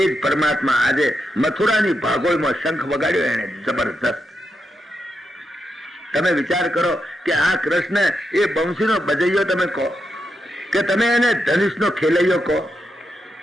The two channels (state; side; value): normal; both; correlation 0.85